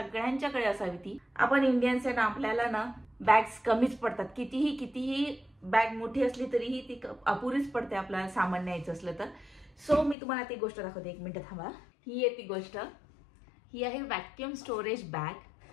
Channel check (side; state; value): right; drops out; at 10.2 s